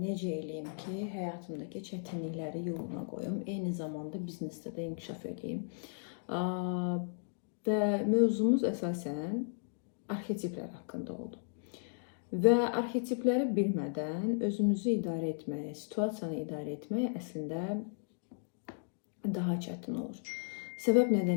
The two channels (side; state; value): right; silent; digital silence